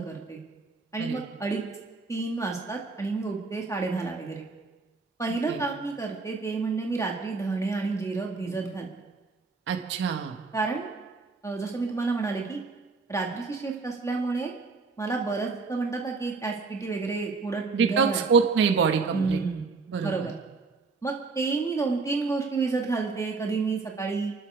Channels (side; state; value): left; quieter; 4.3 dB